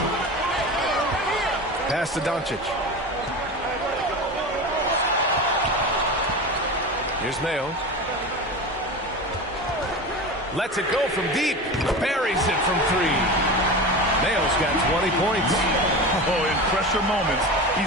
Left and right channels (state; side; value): normal; both; correlation 0.28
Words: Pass to Doncic. Here's Mayo. Lets it go from deep. Buries it from three. Mayo's got 20 points. Oh, in pressure moments,